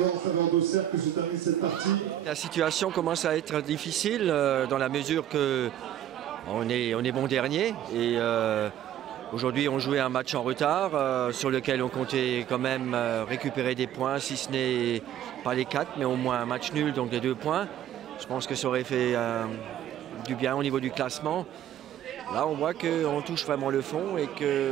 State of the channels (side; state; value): left; quieter; 11.3 dB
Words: en faveur d'Auxerre que se termine cette partie. La situation commence à être difficile dans la mesure que on est bon dernier et aujourd'hui on jouait un match en retard sur lequel on comptait quand même récupérer des points, si ce n'est pas les 4 mais au moins un match nul, donc les 2 points. Je pense que ça aurait fait du bien au niveau du classement. Là, on voit qu'on touche vraiment le fond et